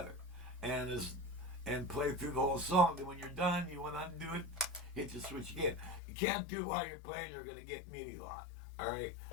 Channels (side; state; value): right; drops out; at 6.0 s